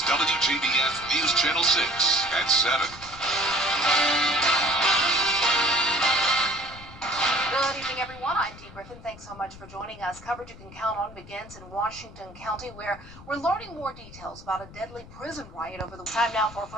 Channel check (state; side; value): noise; left; rumble, 18 dB below the sound